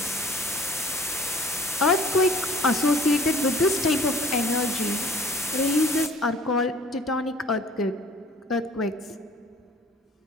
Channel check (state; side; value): normal; both; correlation 0.50